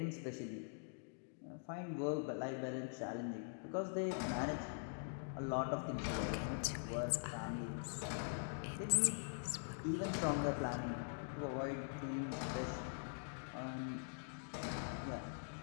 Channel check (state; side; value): silent; right; digital silence